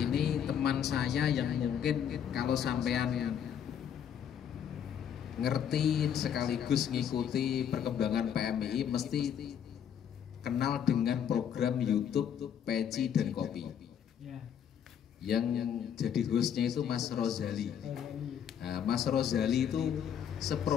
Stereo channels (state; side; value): quieter; right; 8.7 dB